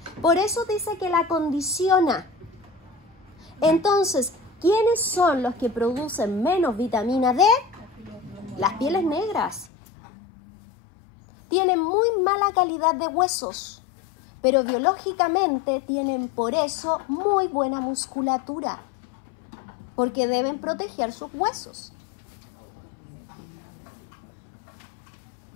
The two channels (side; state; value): right; drops out; at 9.7 s